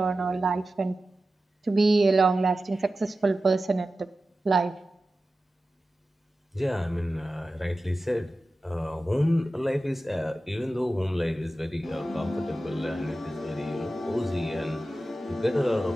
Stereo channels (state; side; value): normal; both; correlation 0.94